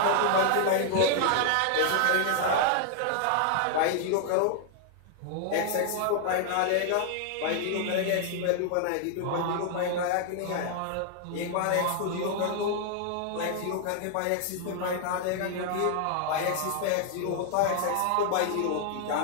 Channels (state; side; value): different; both; correlation 0.00